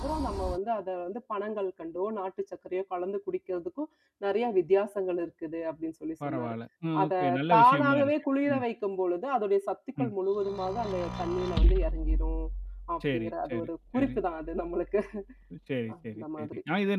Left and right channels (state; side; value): identical; both; correlation 1.00